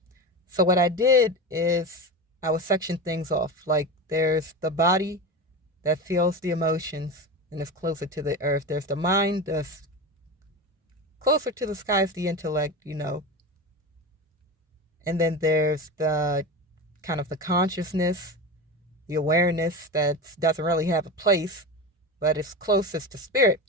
So what I did is I would section things off. Like there's the body that feels the emotions and is closer to the earth. There's the mind that's closer to the skies, the intellect. And then there's the kind of the consciousness, the awareness that doesn't really have a place, but it's closest to spirit.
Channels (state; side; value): normal; both; correlation 0.24